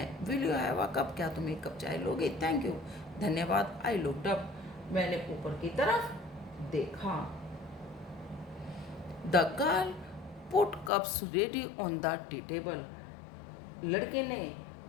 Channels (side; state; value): right; drops out; at 10.9 s